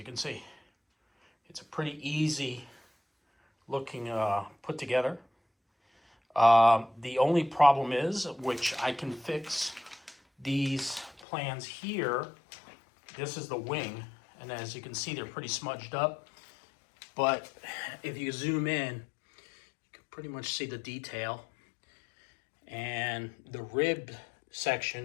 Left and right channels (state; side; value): drops out; right; at 11.2 s